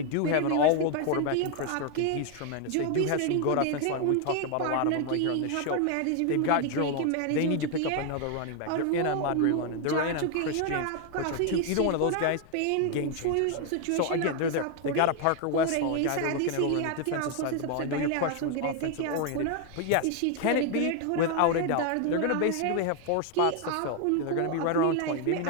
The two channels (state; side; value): different; both; correlation 0.01